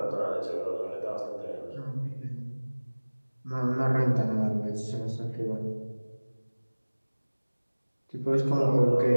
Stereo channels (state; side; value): inverted; both; correlation -1.00